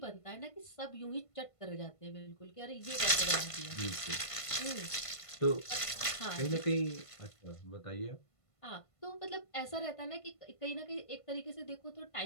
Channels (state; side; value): late; right; 1.5 ms